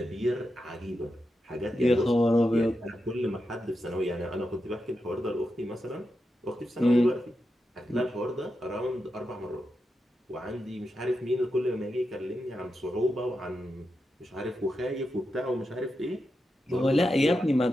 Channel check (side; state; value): both; normal; correlation 0.88